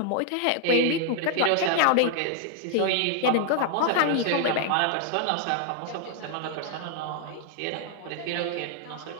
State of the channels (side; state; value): both; different; correlation -0.01